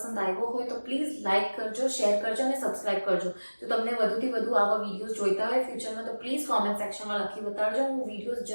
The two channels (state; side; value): inverted; both; correlation -1.00